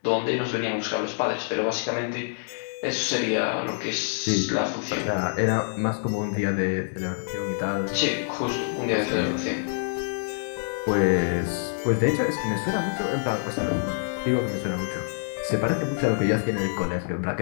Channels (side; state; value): right; silent; digital silence